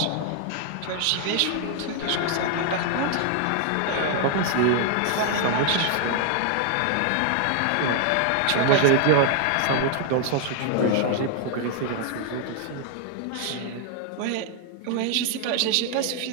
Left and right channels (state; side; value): different; both; correlation 0.00